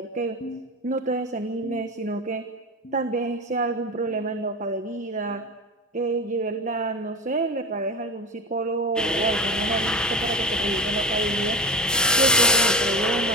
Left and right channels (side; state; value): both; normal; correlation 0.25